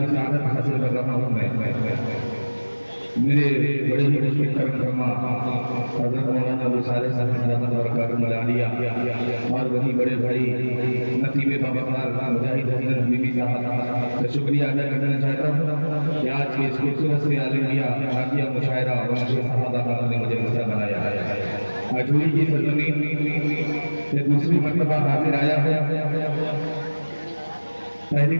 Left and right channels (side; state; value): both; inverted; correlation -1.00